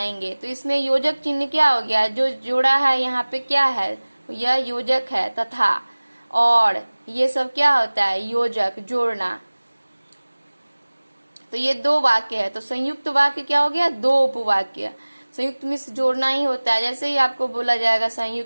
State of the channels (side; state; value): both; inverted; correlation -1.00